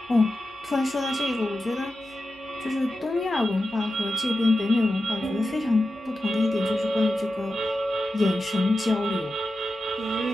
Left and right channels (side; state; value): both; normal; correlation 0.92